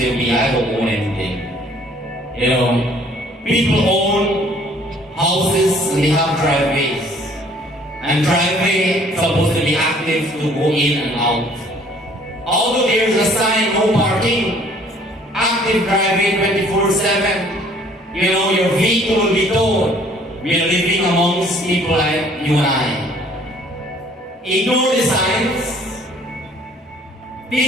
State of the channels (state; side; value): normal; both; correlation 0.57